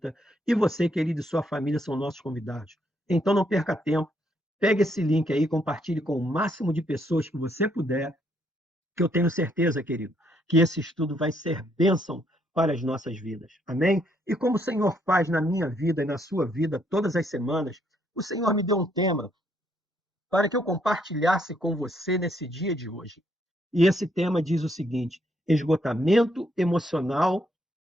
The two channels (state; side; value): normal; both; correlation 0.72